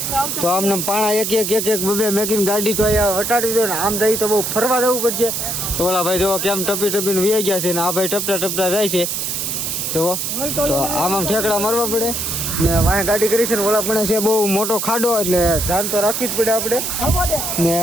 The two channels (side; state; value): right; noise; hiss, 2 dB below the sound